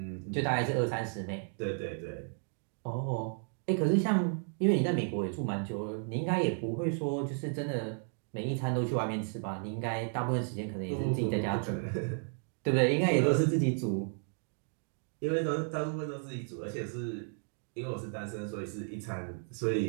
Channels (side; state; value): left; silent; 56 dB below the other